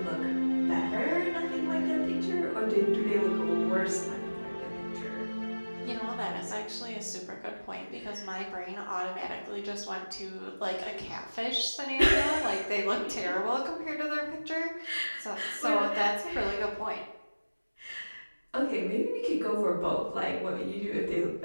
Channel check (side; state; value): both; inverted; correlation -1.00